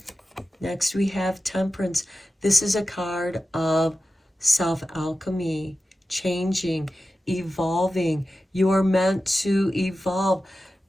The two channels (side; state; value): both; normal; correlation 0.93